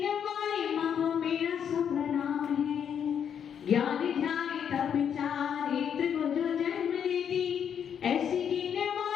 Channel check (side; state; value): right; quieter; 8.2 dB